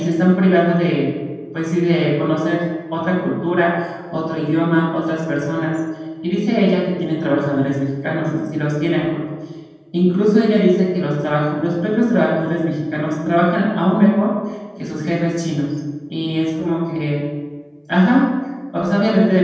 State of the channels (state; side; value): identical; both; correlation 1.00